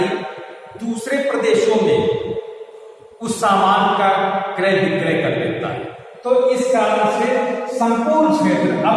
दूसरे प्रदेशों में उस सामान का क्रय विक्रय कर लेता है। तो इस कारण से संपूर्ण क्षेत्र,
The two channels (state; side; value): identical; both; correlation 1.00